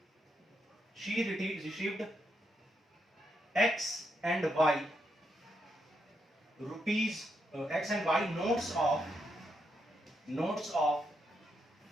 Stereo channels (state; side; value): normal; both; correlation 0.80